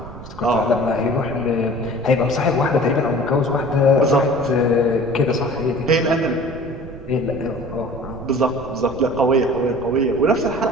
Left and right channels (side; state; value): right; noise; rumble, 14 dB below the sound